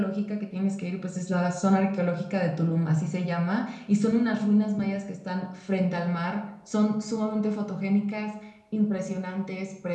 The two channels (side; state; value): both; identical; correlation 1.00